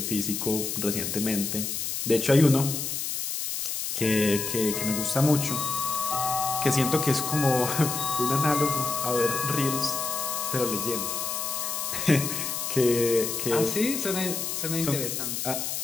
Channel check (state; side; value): noise; left; hiss, 3 dB below the sound